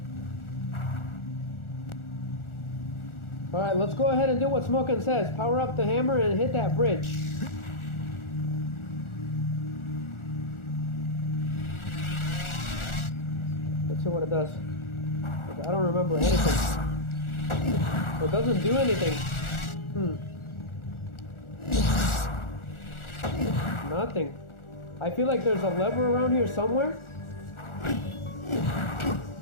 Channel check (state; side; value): late; right; 1.4 ms